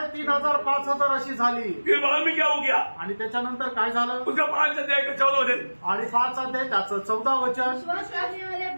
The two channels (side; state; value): both; inverted; correlation -1.00